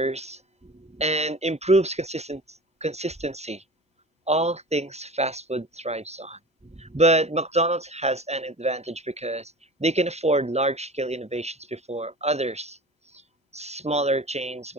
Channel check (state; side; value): normal; both; correlation 0.36